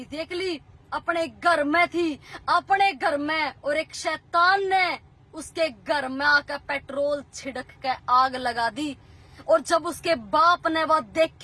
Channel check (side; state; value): both; identical; correlation 1.00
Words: थी, एकली अपने घर में थी, अपने घर में। और एक शैतान ने उसके घर में आकर पेट्रोल छिड़क के आग लगा दी। और जब उसके बाप ने वह